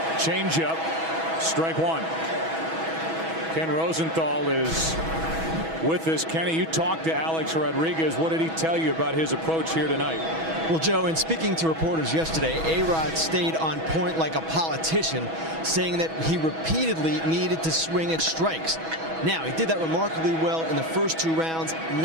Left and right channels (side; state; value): left; late; 6.2 ms